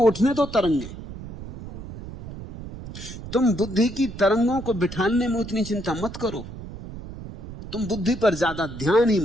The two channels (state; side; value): noise; right; rumble, 12 dB below the sound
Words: तो तरंगे, तुम बुद्धि की तरंगों को बिठाने में उतनी चिंता मत करो। तुम बुद्धि पर ज्यादा ध्यान ही